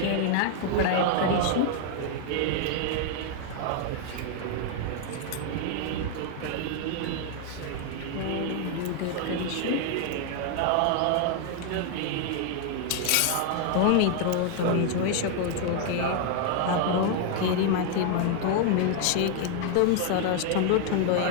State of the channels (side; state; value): both; different; correlation 0.00